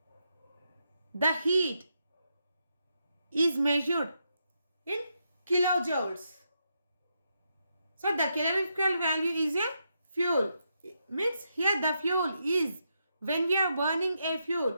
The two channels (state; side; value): inverted; both; correlation -0.82